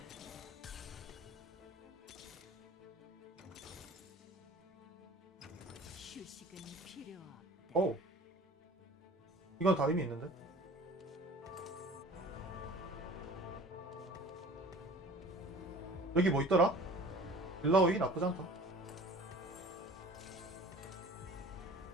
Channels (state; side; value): normal; both; correlation 0.45